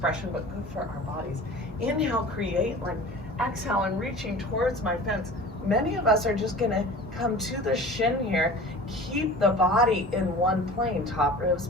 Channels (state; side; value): normal; both; correlation 0.40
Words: but good for our bodies. Inhale, create length. Exhale, I'm reaching towards my fence. Many of us are just going to come to the shin here. Keep the body in one plane. Top ribs